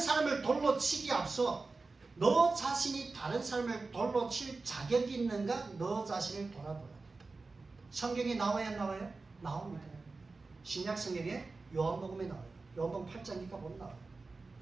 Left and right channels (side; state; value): left; quieter; 3.8 dB